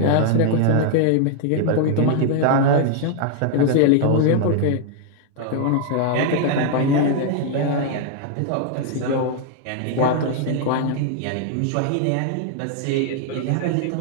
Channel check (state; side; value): different; both; correlation 0.00